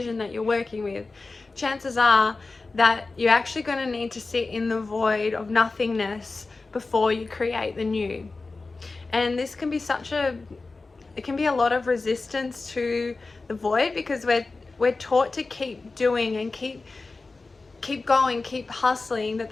that you're working with, chances are that you're actually going to need to sit in the void of nothingness before you create the new. And this can be it can be a lot of resistance to the void, because we're taught to keep doing and keep going, keep hustling,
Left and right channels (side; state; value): right; quieter; 3.7 dB